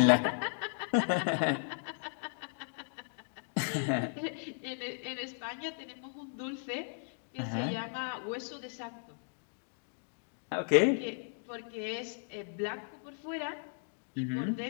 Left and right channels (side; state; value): right; silent; digital silence